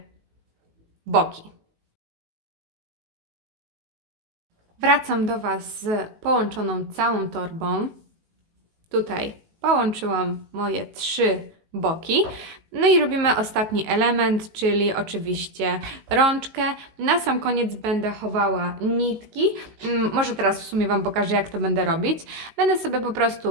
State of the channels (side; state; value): left; late; 19 ms